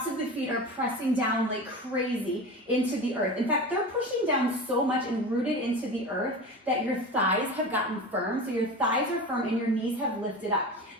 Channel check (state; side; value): normal; both; correlation 0.30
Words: of the feet are pressing down like crazy into the earth. In fact, they're pushing down so much and rooted into the earth that your thighs have gotten firm. So your thighs are firm and your knees have lifted up.